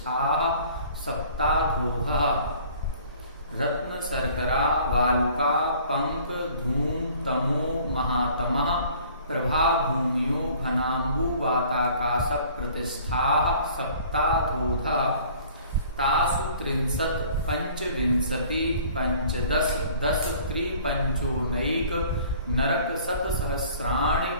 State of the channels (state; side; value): inverted; both; correlation -0.52